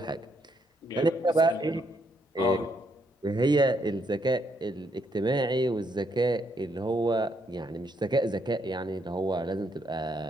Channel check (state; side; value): normal; both; correlation 0.74